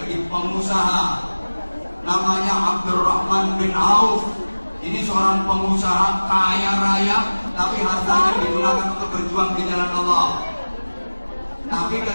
pengusaha, namanya Abdurrahman bin Auf. Ini seorang pengusaha kaya raya, tapi hartanya digunakan untuk berjuang di jalan Allah. Tapi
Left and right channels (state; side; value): inverted; both; correlation -1.00